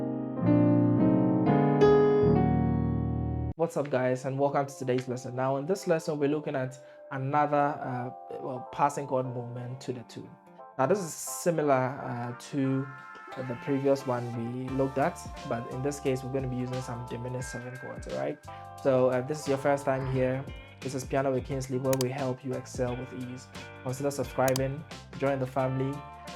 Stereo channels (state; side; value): identical; both; correlation 1.00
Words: What's up, guys, and welcome to today's lesson. Now in this lesson we're looking at another passing chord movement to the tune. Now this is similar to the previous one we looked at, but in this case we're going to be using some diminished 7 chords. All right, so if this is your first time here, this is Piano with Kingsley, where we help you excel with ease. Consider subscribing, join the family,